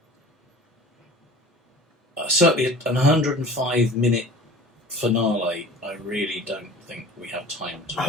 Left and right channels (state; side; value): normal; both; correlation 0.42